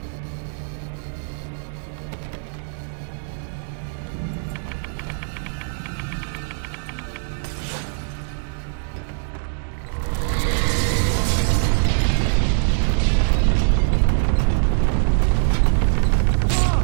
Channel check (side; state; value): left; silent; digital silence